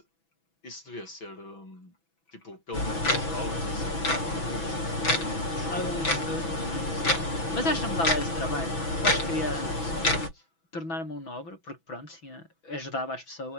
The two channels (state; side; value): late; right; 6.1 ms